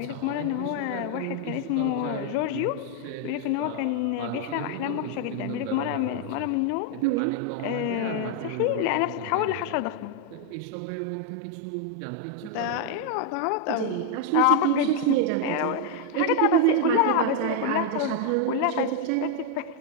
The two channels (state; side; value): different; both; correlation 0.00